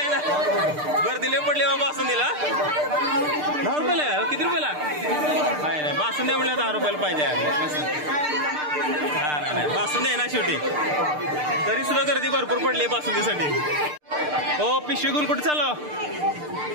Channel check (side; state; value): left; late; 6.7 ms